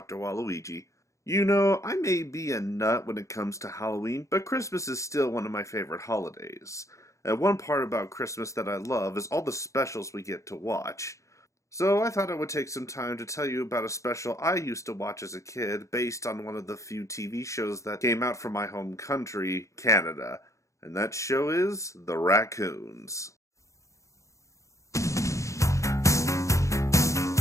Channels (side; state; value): right; late; 0.15 ms